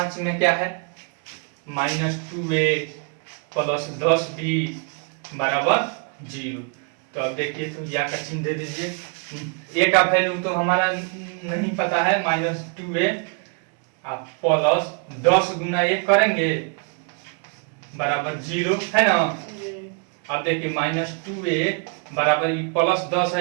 में क्या है -2A प्लस 10B बराबर 0। तो अब देखिए तो या का चिन्ह दे दीजिए। A का वैल्यू तो हमारा नहीं पता है -2A, आप प्लस 10 गुना 1 करेंगे बराबर 0 है ना। अब देखिए -2A बराबर प्लस 10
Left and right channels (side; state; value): left; quieter; 37.2 dB